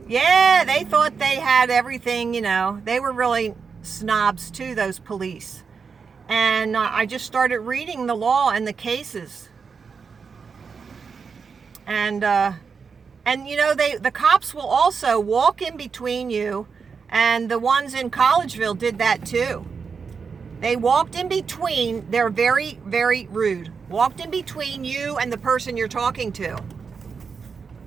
Yeah, they thought they had everything, They were really snobs too, those police. And I just started reading the law and the cases. And the cops will also walk in between you, and the ones in Collegeville did that too. They walked in between. They're very, very rude. Walked in between you and the person you're talking to.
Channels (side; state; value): left; quieter; 5.6 dB